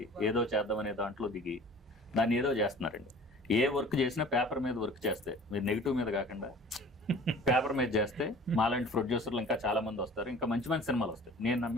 ఏదో చేద్దామనే దాంట్లో దిగి దాన్ని ఏదో చేస్తున్నారండి. ఏ వర్క్ చేసినా పేపర్ మీద వర్క్ చేస్తే, మీరు నెగిటివ్ మీద కాకుండా పేపర్ మీద చేస్తే మాలాంటి ప్రొడ్యూసర్లు ఇంకా చాలా మంది వస్తారు, ఇంకా మంచి మంచి సినిమాలు వస్తాయి. నేను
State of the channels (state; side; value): normal; both; correlation 0.45